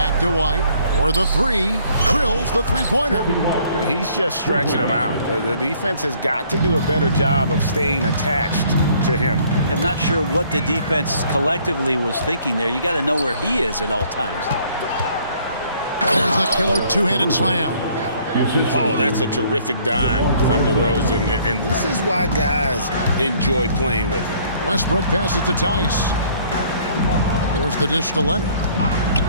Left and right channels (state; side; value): inverted; both; correlation -0.60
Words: to White for the three. Drills the three-pointer. He's just stretching him out. The defense has got to do a better job of staying attached to him. I'm not sure what the defense collectively was thinking there. You got to know where he is at all times. There's the killer two-handed slam. Oh, that's a terrific dime from DeRozan, and this is why guys enjoy playing with it. Westbrook passes to Tice. There's the dish to Leonard.